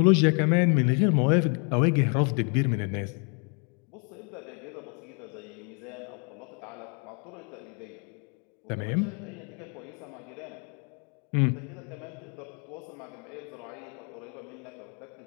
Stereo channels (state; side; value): quieter; right; 37.9 dB